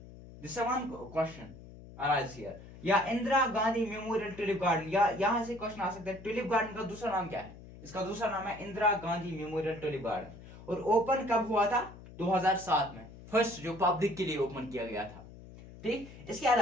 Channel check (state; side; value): noise; left; hum, 17 dB below the sound